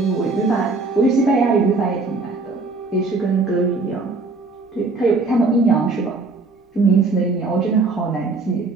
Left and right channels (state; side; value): quieter; left; 3.7 dB